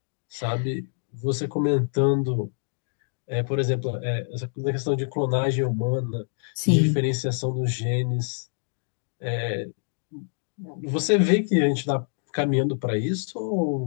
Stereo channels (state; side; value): silent; right; digital silence